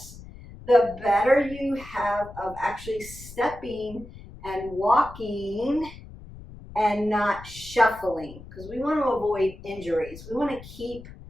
the better you have of actually stepping and walking and not shuffling, because we want to avoid injuries. We want to keep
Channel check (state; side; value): noise; left; rumble, 16 dB below the sound